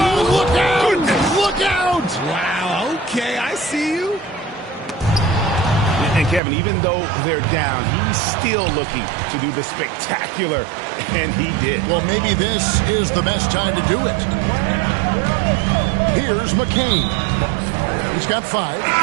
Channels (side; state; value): left; drops out; at 6.4 s